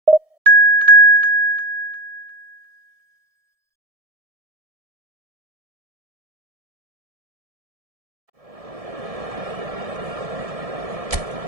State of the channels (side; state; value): left; late; 1.7 ms